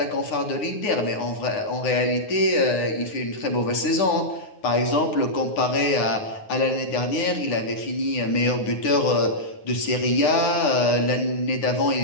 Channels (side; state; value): right; late; 9.5 ms